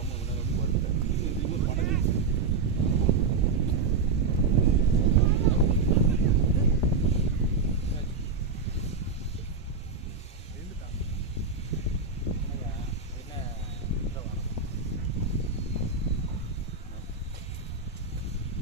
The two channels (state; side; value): quieter; left; 4.5 dB